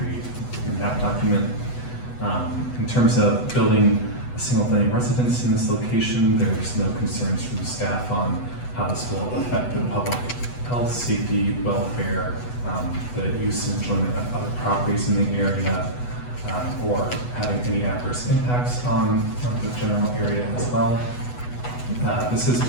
in that document. In terms of building a single-family residence in this location, there's no concerns from the staff on how this will affect the public health, safety, welfare, the use and enjoyment of other properties in the area, or having any adverse impacts on the general area as well. This is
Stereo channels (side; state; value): right; late; 8.1 ms